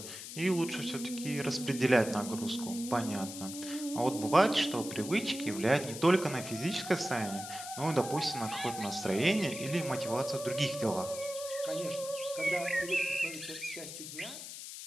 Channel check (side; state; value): left; noise; hiss, 10 dB below the sound